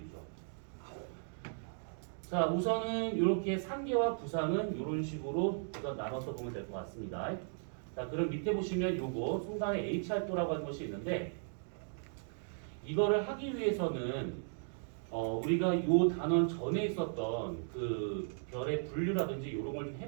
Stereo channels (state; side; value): silent; left; digital silence